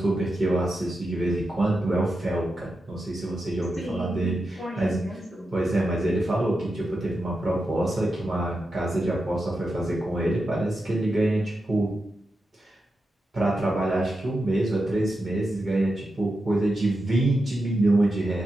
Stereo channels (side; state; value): both; normal; correlation 0.88